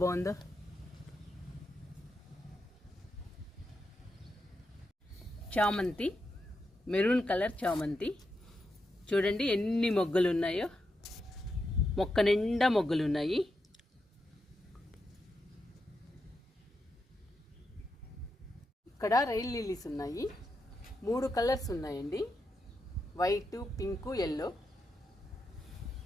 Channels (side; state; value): both; normal; correlation 0.85